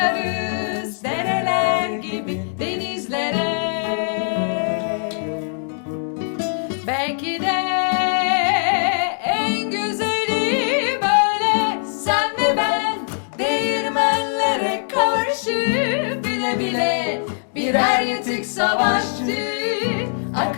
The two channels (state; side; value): silent; right; digital silence